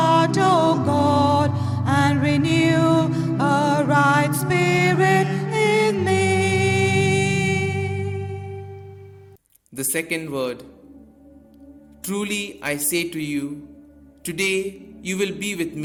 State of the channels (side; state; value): both; identical; correlation 1.00